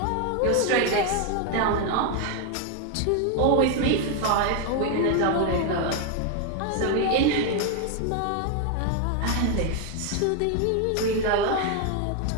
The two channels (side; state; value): both; different; correlation 0.01